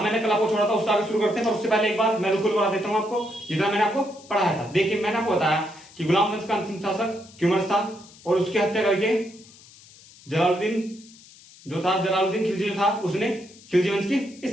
मैंने कल आपको छोड़ा था उससे आगे शुरू करते हैं, पर उससे पहले एक बार मैं बिल्कुल बता देता हूं आपको जितना मैंने आपको पढ़ाया था। देखिए, मैंने आपको बताया कि गुलाम वंश का अंतिम शासक क्यूमर्स था और उसकी हत्या करके जलालुद्दीन खिलजी जो था उसने खिलजी वंश की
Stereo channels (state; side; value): noise; left; hiss, 23 dB below the sound